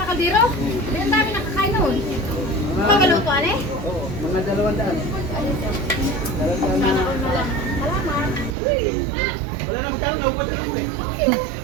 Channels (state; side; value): drops out; left; at 8.6 s